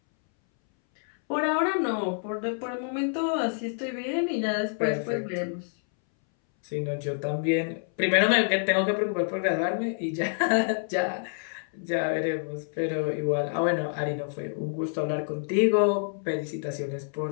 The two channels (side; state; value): right; silent; 60 dB below the other